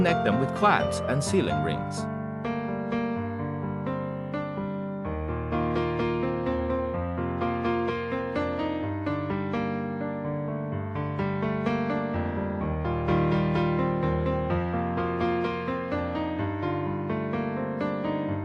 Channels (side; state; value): both; identical; correlation 1.00